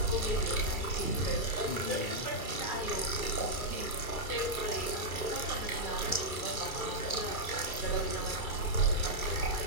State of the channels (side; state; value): right; late; 2.3 ms